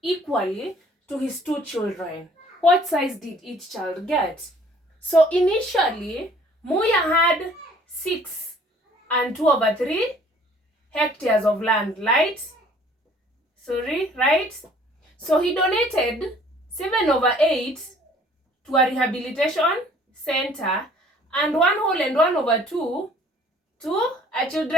to his 2 children. What size did each child get? So initially, Moya had 6 and 2/3 hectares of land, right? So he donated 7/8 to a rehabilitation center and 1 whole and 1/2 to a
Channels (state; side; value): normal; both; correlation 0.55